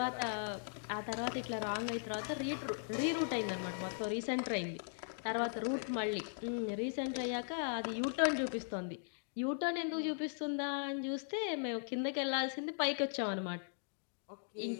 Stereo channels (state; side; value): silent; right; digital silence